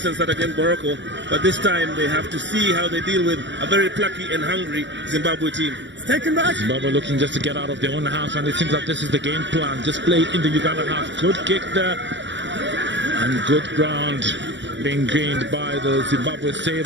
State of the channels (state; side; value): late; left; 0.53 ms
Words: start against Morocco. But this time they have to see how they deal with a very plucky and hungry Zimbabwe team. Taken back. Zimbabwe looking just to get out of their own half, and it seems like this is the game plan. Just play in the Uganda half. Good kick there. And good ground being gained by the Zimbabwe